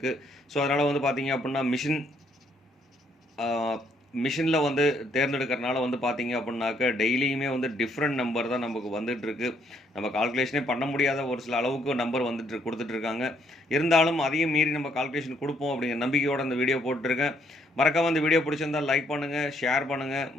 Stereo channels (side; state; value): both; normal; correlation 0.70